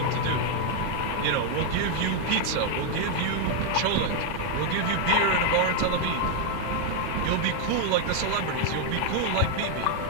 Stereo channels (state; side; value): different; both; correlation 0.01